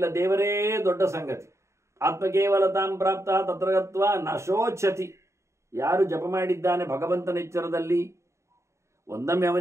ದೇವರೇ ದೊಡ್ಡ ಸಂಗತಿ. ಆತ್ಮಕೇವಲತಾಂ ಪ್ರಾಪ್ತ ತತ್ರಗತ್ವ ನಶೋಚ್ಛತಿ. ಯಾರು ಜಪ ಮಾಡಿದ್ದಾನೆ ಭಗವಂತನ ಎಚ್ಚರದಲ್ಲಿ, ಒಂದೊಮ್ಮೆ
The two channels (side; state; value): left; late; 0.14 ms